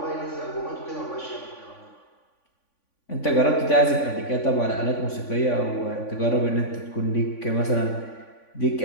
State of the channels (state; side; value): late; right; 3.5 ms